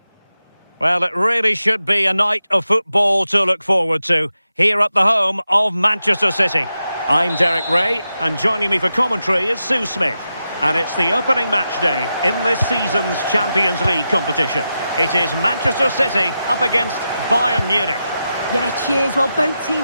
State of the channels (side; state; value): both; inverted; correlation -0.89